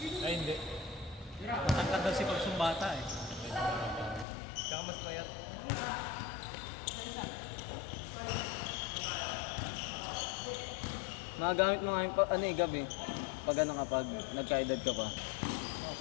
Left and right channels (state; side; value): drops out; right; at 4.2 s